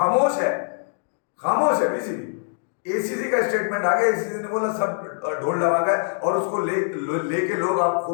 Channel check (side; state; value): right; silent; digital silence